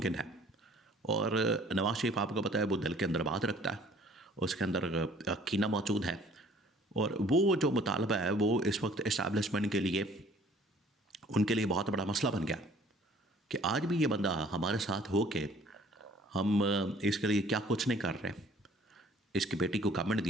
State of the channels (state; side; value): normal; both; correlation 0.55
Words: है। और नवाज शरीफ आपको पता है वो दिल के अंदर बात रखता है, उसके अंदर कीना मौजूद है। और वो जो मुतालबा है वो इस वक्त इस्टेब्लिशमेंट के लिए, उनके लिए बहुत बड़ा मसला बन गया कि आज भी ये बंदा हमारे साथ हो के हम इसके लिए क्या कुछ नहीं कर रहे। इसकी बेटी को गवर्नमेंट